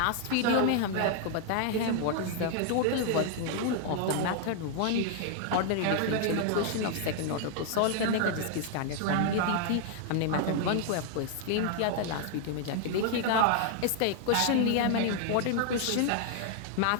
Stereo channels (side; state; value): both; different; correlation 0.00